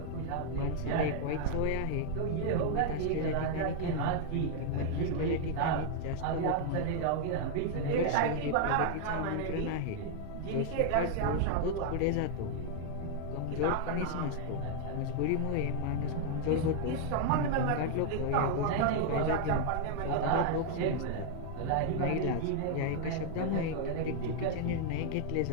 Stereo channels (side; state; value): both; different; correlation 0.00